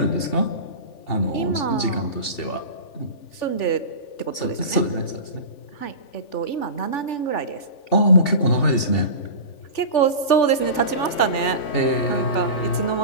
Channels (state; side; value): late; right; 3.4 ms